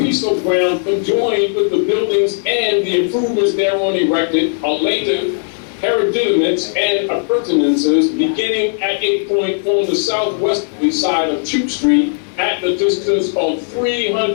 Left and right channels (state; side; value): silent; right; digital silence